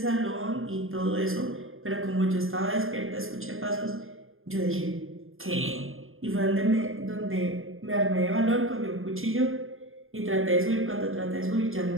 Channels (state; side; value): late; left; 0.60 ms